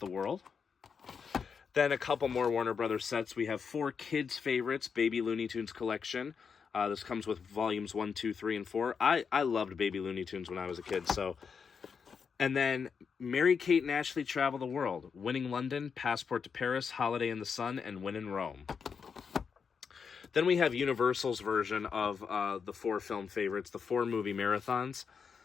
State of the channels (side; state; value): right; quieter; 6.1 dB